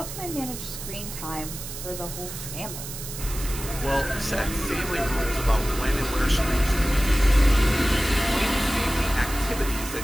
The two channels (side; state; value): right; noise; hiss, 9 dB below the sound